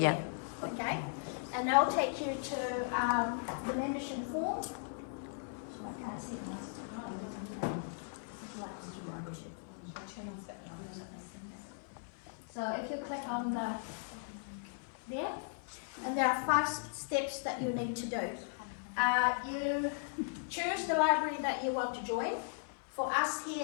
There, okay? And they'll take you to the membership form. So I can't see So if you click on there, and there are 5 steps that you need to do. You choose the library that you want to join. For us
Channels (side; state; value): right; silent; 53 dB below the other